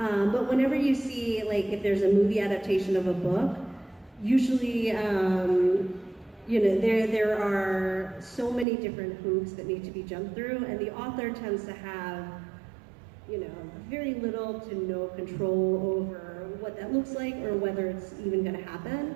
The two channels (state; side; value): drops out; left; at 8.7 s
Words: whenever you see, like, if there's a movie adaptation of a book, usually, you know, there are so many different hoops that need to be jumped through, and the author tends to have, you know, very little to no control over what that looks like or whether it's even going to